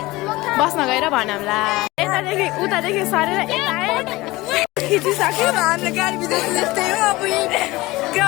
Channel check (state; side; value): quieter; right; 20.2 dB